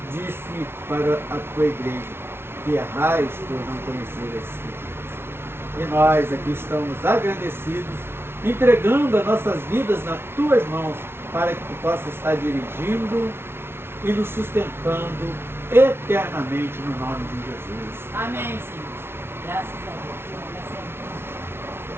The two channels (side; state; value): left; late; 0.12 ms